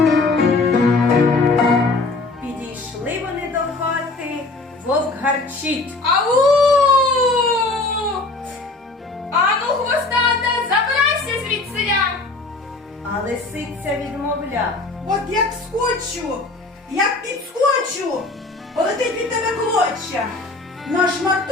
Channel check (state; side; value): quieter; right; 3.3 dB